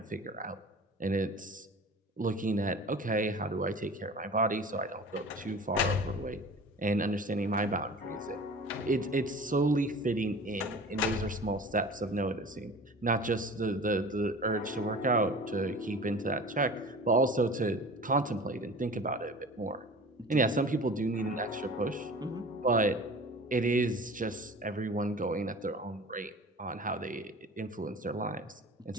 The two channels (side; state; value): both; normal; correlation 0.40